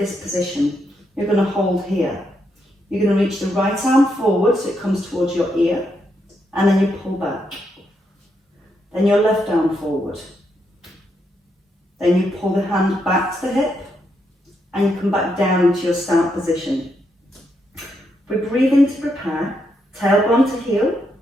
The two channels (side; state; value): both; normal; correlation 0.79